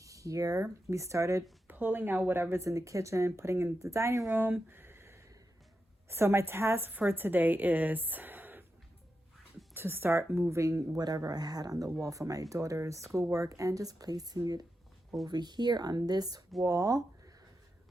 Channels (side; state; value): both; normal; correlation 0.88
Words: We started pulling out whatever's in the kitchen, putting in the dining room. So my task for today is to start moving whatever I had on the wall for my daughter's schoolwork and just placing it over here on this wall.